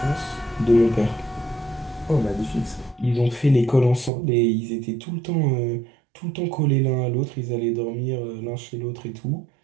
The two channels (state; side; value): drops out; left; at 4.1 s